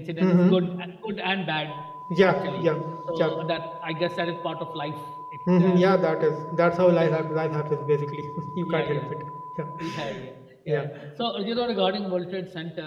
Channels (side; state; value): both; identical; correlation 1.00